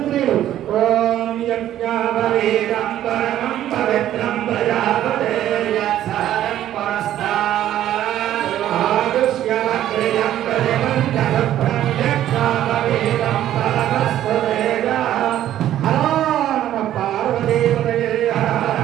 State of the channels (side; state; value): left; quieter; 12.2 dB